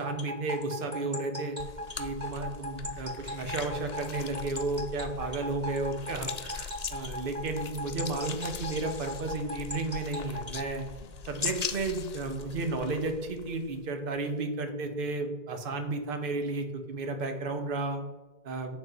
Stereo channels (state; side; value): late; left; 1.8 ms